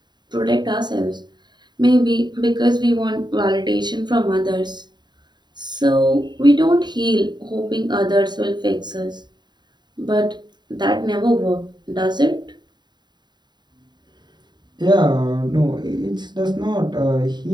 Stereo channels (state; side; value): late; left; 0.21 ms